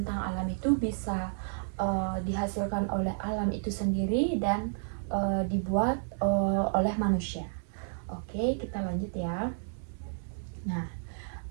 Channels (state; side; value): silent; left; 57 dB below the other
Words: alam itu bisa dihasilkan oleh alam itu sendiri dan dibuat oleh manusia. Oke, kita lanjut ya. Nah,